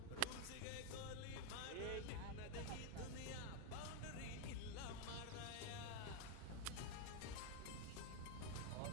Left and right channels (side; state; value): both; different; correlation 0.01